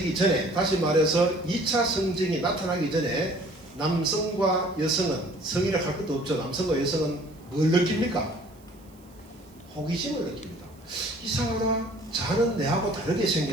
전에, 다시 말해서 2차 성징이 나타나기 전에 남성과 여성은, 성이라 할 것도 없죠. 남성과 여성은 뭘 느낍니까? 호기심을 느낍니다. 이상하다. 자는 내하고 다르게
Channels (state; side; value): noise; right; hiss, 29 dB below the sound